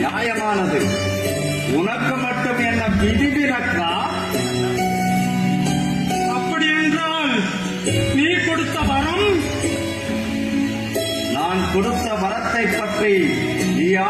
உனக்கு மட்டும் என்ன விதிவிலக்கா? அப்படி என்றால் நீ கொடுத்த வரம் நான் கொடுத்த வரத்தை பற்றி நீ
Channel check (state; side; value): identical; both; correlation 1.00